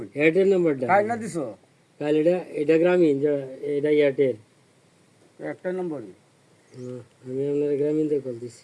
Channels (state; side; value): identical; both; correlation 1.00